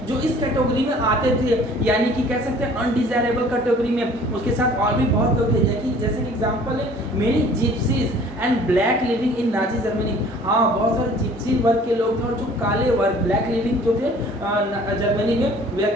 जो इस कैटेगरी में आते थे, यानी कि कह सकते हैं अनडिजायरेबल कैटेगरी में। उसके साथ और भी बहुत लोग थे, जैसे कि एग्जांपल है many gypsies and black living in Nazi Germany. हाँ, बहुत सारे जिप्सी वर्ग के लोग थे और जो काले वर्ग ब्लैक लिविंग जो थे जर्मनी में, वे are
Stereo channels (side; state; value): both; normal; correlation 0.51